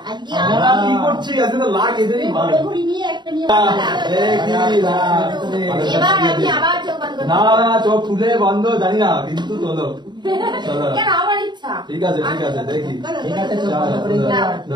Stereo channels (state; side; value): late; left; 0.21 ms